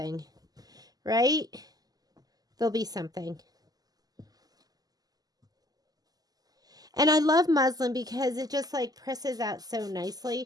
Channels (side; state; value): left; late; 0.18 ms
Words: right? There'll be something. And I love muslin because it just like presses out so